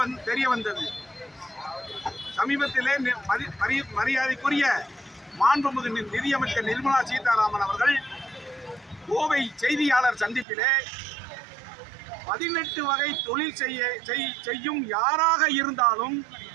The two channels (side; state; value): left; drops out; at 10.5 s